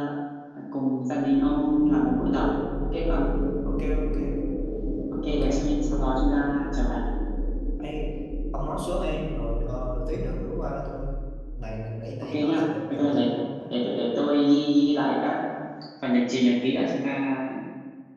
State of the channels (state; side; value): identical; both; correlation 1.00